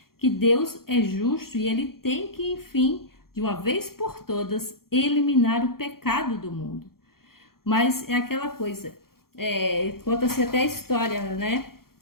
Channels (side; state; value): right; late; 0.93 ms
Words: que Deus é justo e Ele tem que, enfim, de uma vez por todas, eliminar o pecado do mundo. Mas é aquela coisa, conta-se até a história, né,